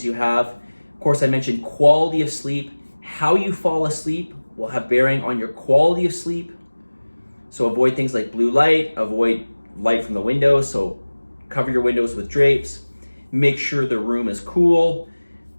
you have. Of course, I mentioned quality of sleep. How you fall asleep will have bearing on your quality of sleep. So avoid things like blue light, avoid light from the windows. So cover your windows with drapes. Make sure the room is cool.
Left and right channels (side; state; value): both; inverted; correlation -1.00